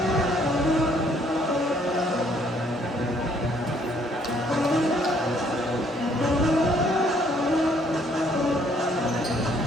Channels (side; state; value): both; normal; correlation 0.64